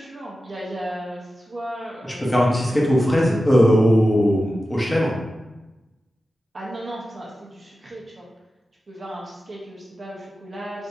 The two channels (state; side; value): normal; both; correlation 0.93